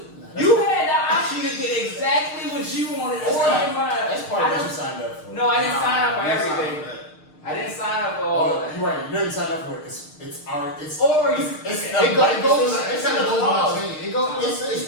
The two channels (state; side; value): late; right; 6.5 ms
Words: You had the option to get exactly what you wanted. That's part of what you signed up for. No, I didn't sign up for everything. I didn't sign up for all of that. You're right. You didn't sign up for it. It's the shit.